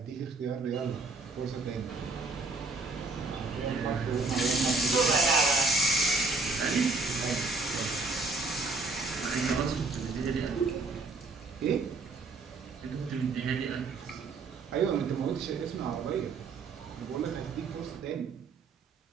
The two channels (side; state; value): left; quieter; 3.8 dB